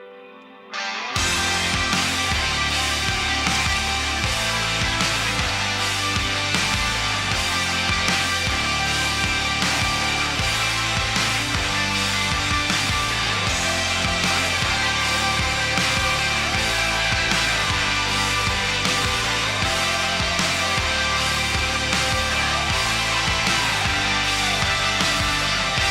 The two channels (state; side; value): identical; both; correlation 1.00